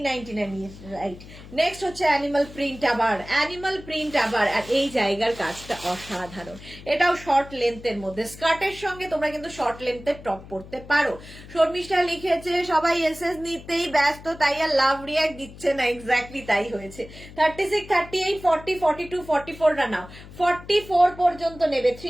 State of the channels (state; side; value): noise; left; hum, 17 dB below the sound